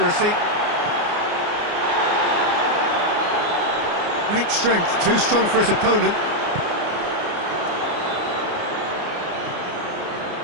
Great strength, too strong for his opponent.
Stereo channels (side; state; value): left; late; 29 ms